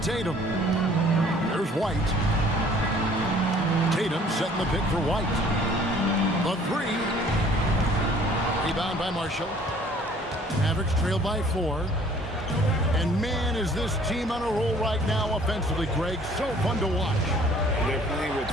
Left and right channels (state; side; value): normal; both; correlation 0.55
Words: There's White. Tatum setting the pick for White. The three. Rebound by Marshall. Mavericks trail by 4. And man, is this team on a roll right now offensively, Greg. So fun to watch. They're playing with